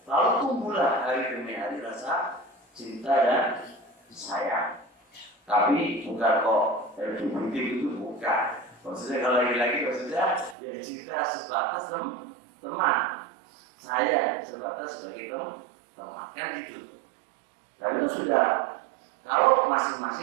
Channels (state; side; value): drops out; left; at 10.6 s